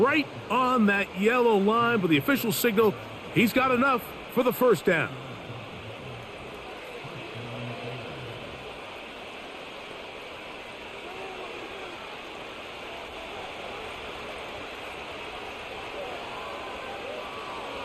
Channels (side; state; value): both; identical; correlation 1.00